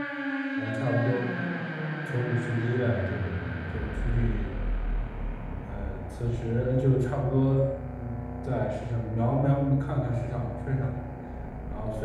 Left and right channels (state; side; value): identical; both; correlation 1.00